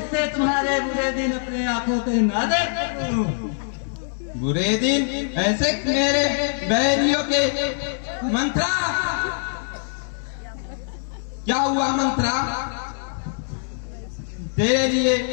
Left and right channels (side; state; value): right; silent; digital silence